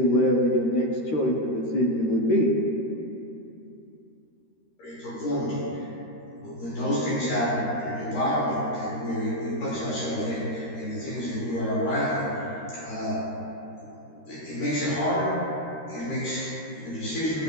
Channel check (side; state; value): right; late; 13 ms